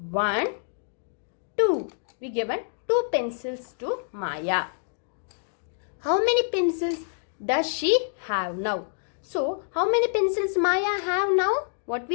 1, 2. We given 2 pencils to Maya. How many pencils does she have now? So, how many pencils Maya have now? What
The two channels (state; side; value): silent; right; digital silence